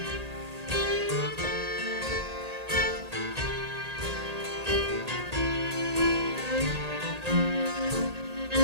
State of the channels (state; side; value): late; left; 1.8 ms